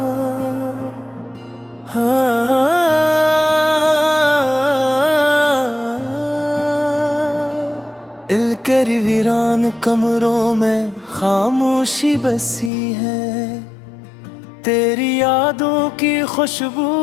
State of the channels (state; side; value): drops out; right; at 12.7 s